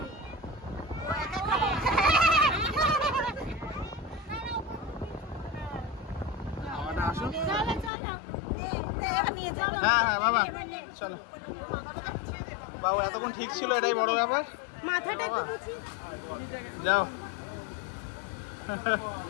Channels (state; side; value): drops out; right; at 7.9 s